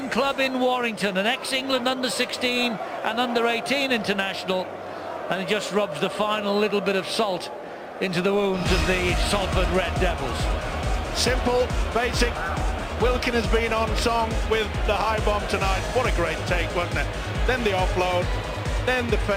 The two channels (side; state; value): both; identical; correlation 1.00